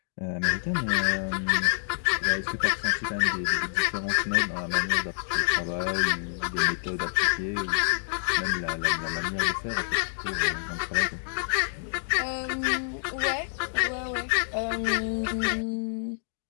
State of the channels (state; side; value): silent; right; digital silence